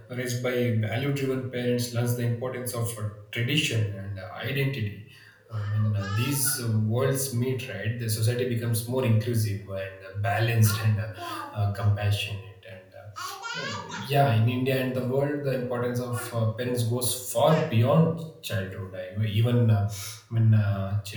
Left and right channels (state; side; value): identical; both; correlation 1.00